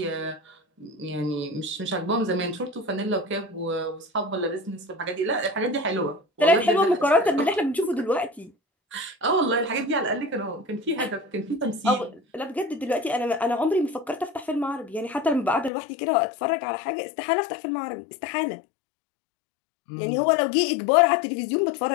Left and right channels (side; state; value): right; drops out; at 15.7 s